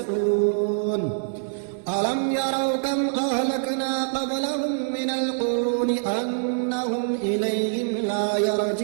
ألم يروا كم أهلكنا قبلهم من القرون أنهم إليهم لا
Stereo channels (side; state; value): left; silent; 62 dB below the other